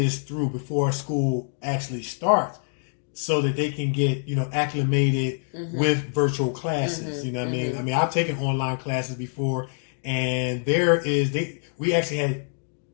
through before school actually starts, so that they can get acclimated with virtual classes. You know what I mean? I mean, I've taken online classes before, and we actually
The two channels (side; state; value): right; silent; digital silence